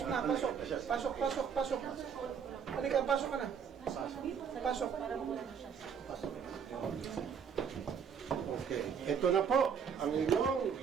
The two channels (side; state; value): left; quieter; 7.1 dB